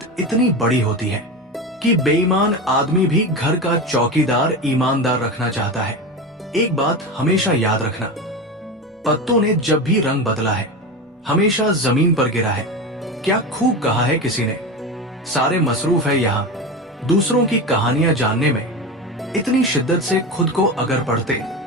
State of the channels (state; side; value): normal; both; correlation 0.23